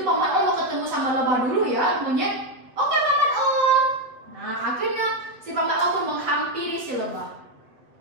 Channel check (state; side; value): late; left; 7.6 ms